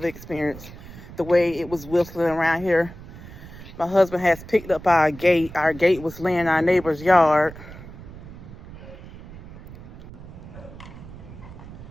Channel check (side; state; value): right; noise; rumble, 15 dB below the sound